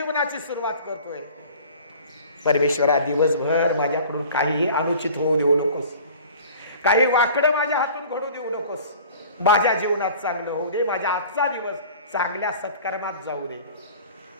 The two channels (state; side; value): inverted; both; correlation -0.45